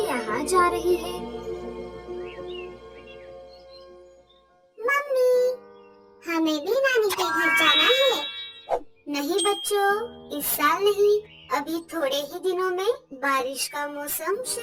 यहाँ जा रही है। मम्मी, हमें भी नानी के घर जाना है। नहीं बच्चों, इस साल नहीं, अभी थोड़े ही दिनों में बारिश का मौसम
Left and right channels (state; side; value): identical; both; correlation 1.00